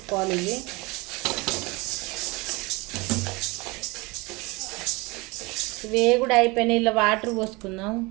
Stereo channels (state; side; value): quieter; left; 25.1 dB